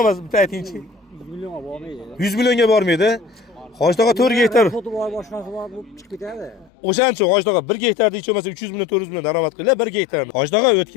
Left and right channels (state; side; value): drops out; right; at 6.7 s